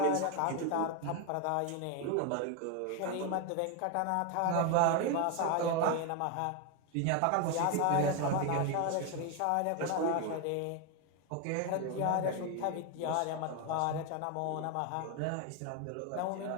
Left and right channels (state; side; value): different; both; correlation 0.01